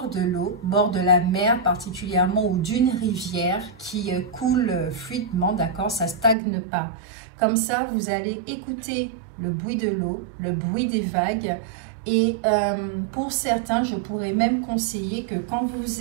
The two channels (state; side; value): drops out; left; at 6.4 s